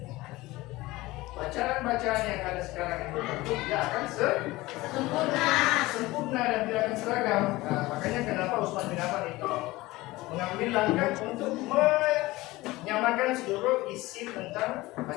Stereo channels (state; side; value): quieter; right; 19.6 dB